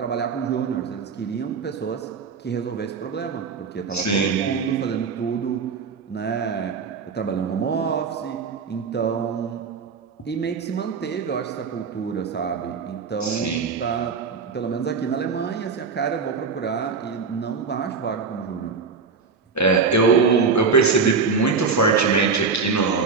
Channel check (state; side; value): quieter; left; 5.2 dB